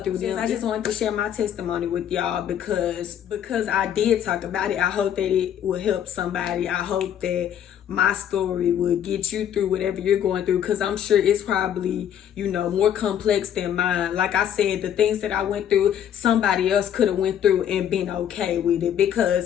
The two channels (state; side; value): quieter; right; 9.7 dB